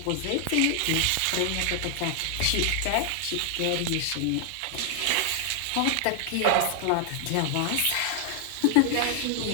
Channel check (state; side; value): different; both; correlation 0.00